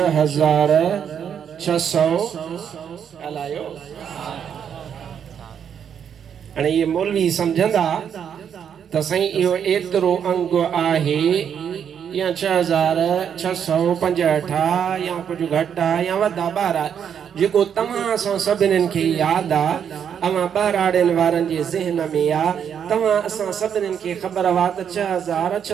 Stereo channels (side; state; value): left; quieter; 8.2 dB